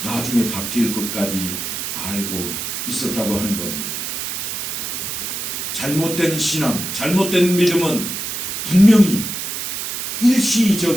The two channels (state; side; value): noise; right; hiss, 4 dB below the sound